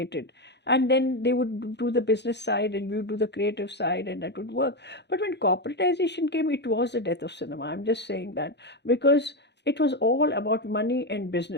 And then they would do the business side and we would do the creative side, and that would work. But when corporatization came, it was the death of cinema. I'm just saying that because it was all about money and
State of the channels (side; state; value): right; late; 0.50 ms